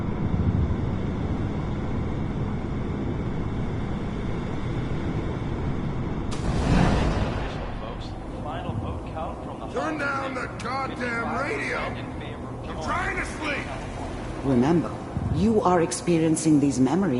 Turn down the goddamn radio! I'm trying to sleep! Remember, you are experiencing these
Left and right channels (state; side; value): identical; both; correlation 1.00